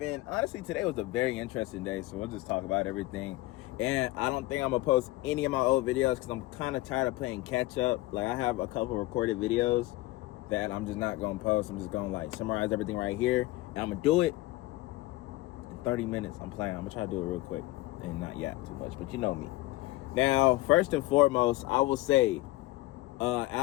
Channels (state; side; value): quieter; right; 18.7 dB